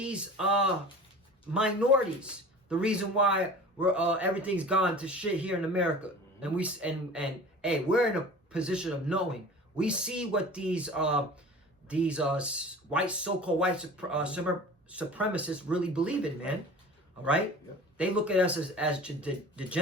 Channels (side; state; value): both; normal; correlation 0.40